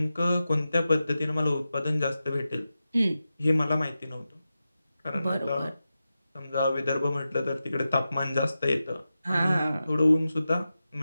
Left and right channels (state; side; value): inverted; both; correlation -0.92